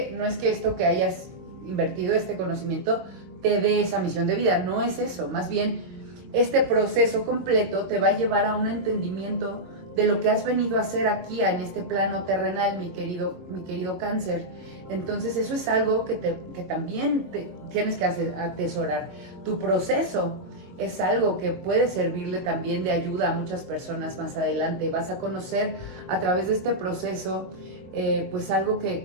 esto que hayas invertido, este conocimiento, te dé esa misión de vida, no es eso, más bien este proceso completo te va a llevar a un entendimiento de lo que has venido a hacer aquí en este plano terrenal, mi querido Cáncer. Entonces eso es algo que también tienes que atesorar. Tu proceso es algo que puede servirle también de ayuda a muchas personas más adelante. Vas a conocer a través de este proceso pues algo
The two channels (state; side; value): late; left; 22 ms